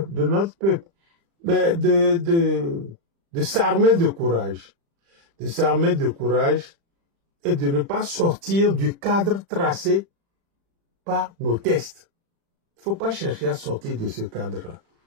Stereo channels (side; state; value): left; late; 35 ms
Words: mais de s'armer de courage. De s'armer de courage et de ne pas sortir du cadre tracé par nos tests. Il ne faut pas chercher à sortir de ce cadre-là.